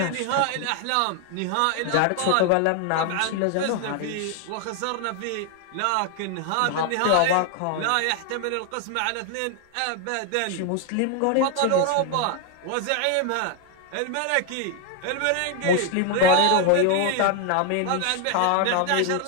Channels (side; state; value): both; different; correlation 0.01